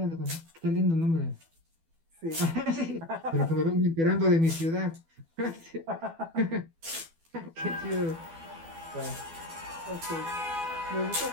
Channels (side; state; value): left; late; 12 ms